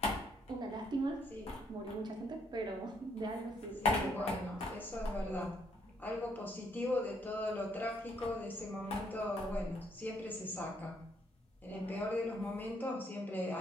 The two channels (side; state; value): both; normal; correlation 0.70